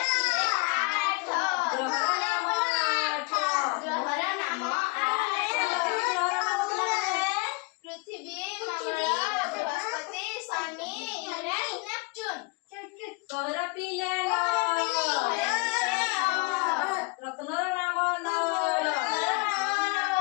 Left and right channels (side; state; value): right; quieter; 27.3 dB